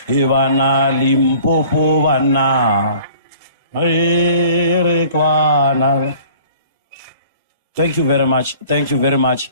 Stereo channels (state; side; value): inverted; both; correlation -0.50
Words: Ivana Limpopo vana. Arekwana. Thank you very much. Thank you very much.